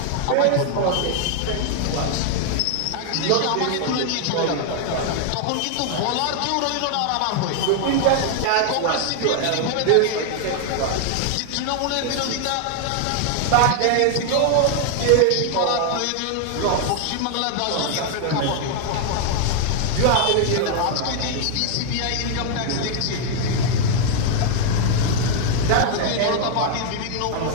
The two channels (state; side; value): different; both; correlation 0.00